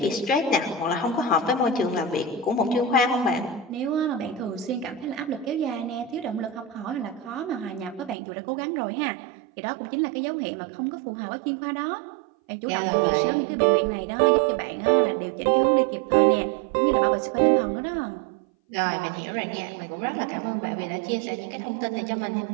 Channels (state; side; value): drops out; left; at 8.2 s